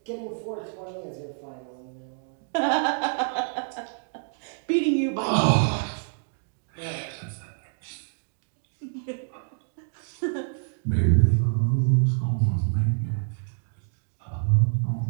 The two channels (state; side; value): silent; left; digital silence